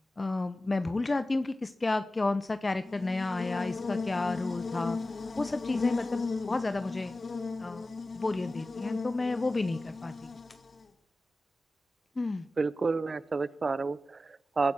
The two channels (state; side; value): normal; both; correlation 0.95